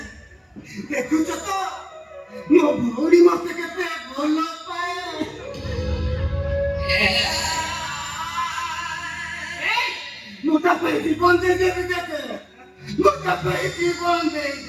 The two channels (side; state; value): both; identical; correlation 1.00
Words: ଦେଖୁଛ ତ ମୋ ଭଉଣୀ ମତେ କେତେ ଭଲ ପାଏ। ମୁଁ ତା ପାଇଁ ଜୀବନ ଦେଇଦେବି ଜେଜେ, ମୁଁ ତା ପାଇଁ ଜୀବନ